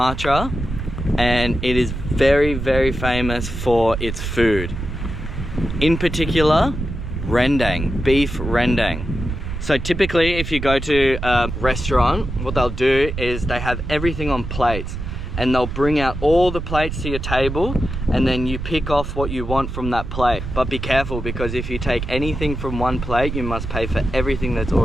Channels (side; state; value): right; noise; rumble, 6 dB below the sound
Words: and it is very, very famous for its food. In particular, rendang, beef rendang. So typically if you go to a restaurant, what they'll do is they have everything on plates, and they'll bring out all the plates to your table, and then you pick off what you want from that plate. But be careful, because if you take anything from one plate, you must pay for everything that's